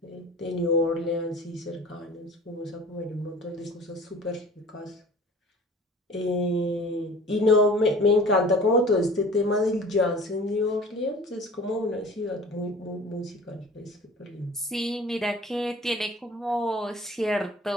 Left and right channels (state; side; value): normal; both; correlation 0.44